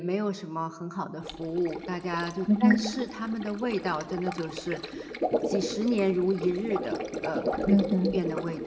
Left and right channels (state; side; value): identical; both; correlation 1.00